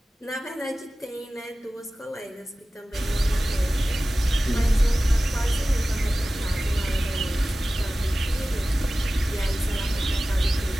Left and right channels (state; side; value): normal; both; correlation 0.96